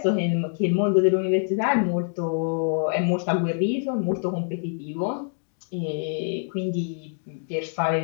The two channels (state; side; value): silent; right; digital silence